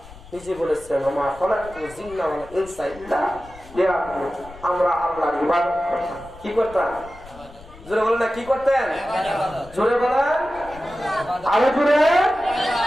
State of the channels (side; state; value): left; noise; rumble, 20 dB below the sound